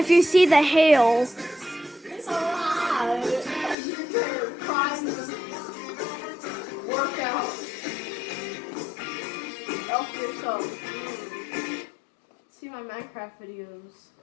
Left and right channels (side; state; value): right; drops out; at 3.8 s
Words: you see the hail. It's alright. Workout. Help yourself. See my Minecraft videos.